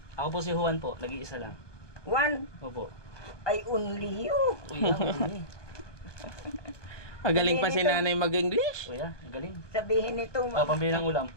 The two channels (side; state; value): right; late; 1.2 ms